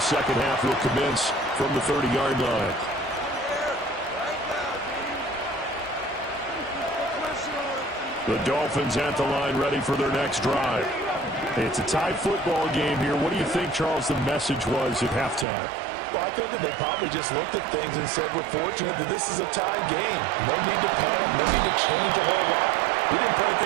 second half will commence from the 30-yard line. The Dolphins at the line ready for their next drive. It's a tie football game here. What do you think, Charles, the message was at halftime? Well, I think that they probably just looked at things and said, we're fortunate that this is a tied game. No need to panic. No need to change a whole lot. We didn't play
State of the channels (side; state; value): left; drops out; at 15.5 s